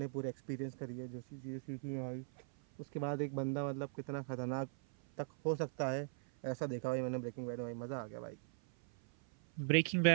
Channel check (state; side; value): silent; left; 51 dB below the other